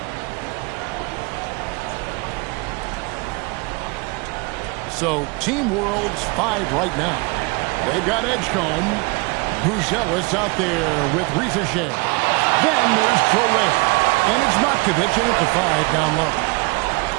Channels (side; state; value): left; quieter; 27.4 dB